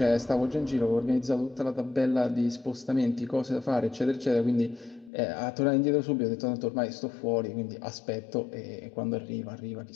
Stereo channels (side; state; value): right; drops out; at 5.1 s